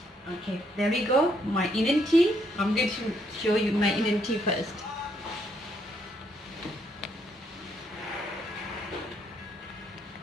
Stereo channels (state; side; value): normal; both; correlation 0.73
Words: Okay, there we go. My Indian tea. I'm going to show you my Indian tea first.